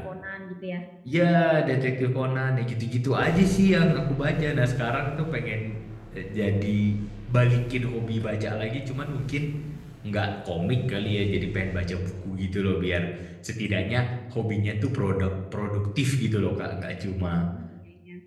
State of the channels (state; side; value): identical; both; correlation 1.00